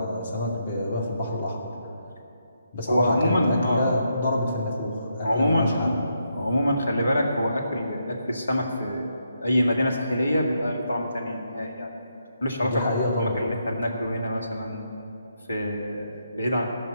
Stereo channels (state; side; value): inverted; both; correlation -0.79